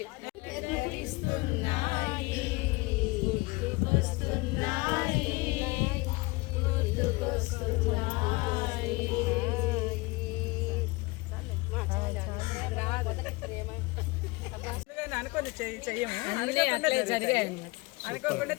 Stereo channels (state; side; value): quieter; right; 24.3 dB